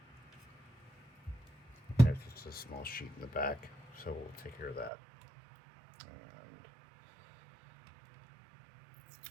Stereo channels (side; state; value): left; drops out; at 4.9 s